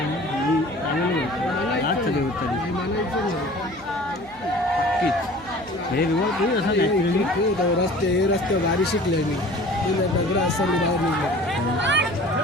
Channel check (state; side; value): noise; right; hum, 24 dB below the sound